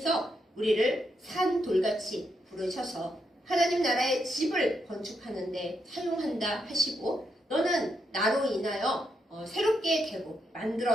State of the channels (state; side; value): normal; both; correlation 0.81